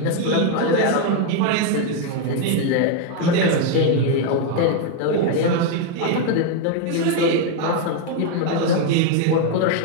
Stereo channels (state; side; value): different; both; correlation 0.01